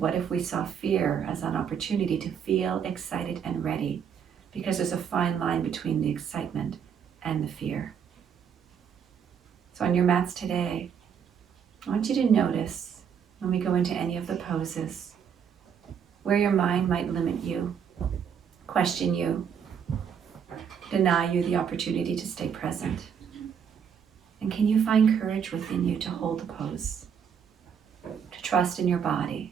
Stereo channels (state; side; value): quieter; left; 7.6 dB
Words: if we saw fear as an opportunity to feel excited and ready? Because there's a fine line between the excitement and the fear. So on your mats today, I want you to notice when we go into any of the poses, where your mind might limit you, question you, deny you the opportunity to stay present. And can you find courage within you to hold the pose? To trust in your body,